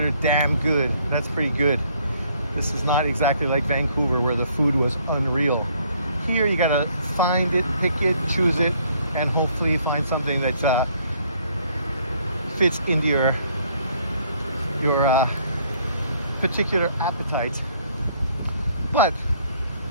damn good, that's pretty good. This is not exactly like Vancouver where the food was unreal. Here you gotta find it, pick it, choose it, and hopefully find something that fits into your particular appetite. But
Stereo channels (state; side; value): inverted; both; correlation -0.64